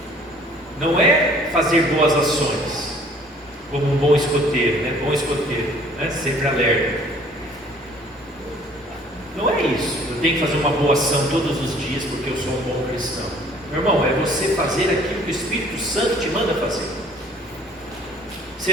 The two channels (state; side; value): normal; both; correlation 0.55